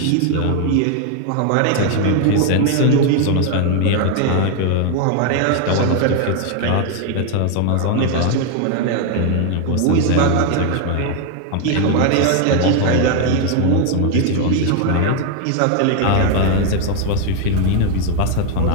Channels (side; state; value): both; different; correlation 0.00